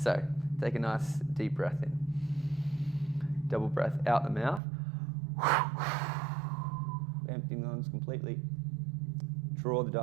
take a nice deep breath in. Double breath out the mouth. Emptying the lungs completely. Draw the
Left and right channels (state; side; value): drops out; left; at 4.6 s